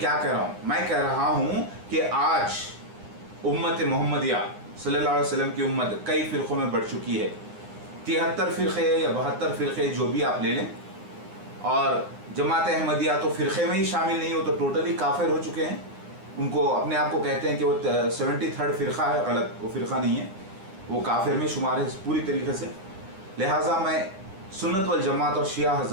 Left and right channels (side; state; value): left; late; 9.9 ms